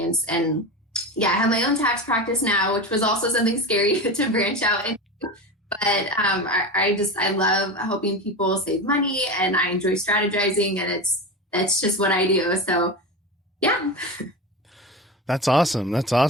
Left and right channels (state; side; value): normal; both; correlation 0.24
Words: And yeah, I have my own tax practice now, which was also something scary to branch out into. But I love helping people save money, and I enjoy strategizing, and that's just what I do. So yeah. That's awesome. That's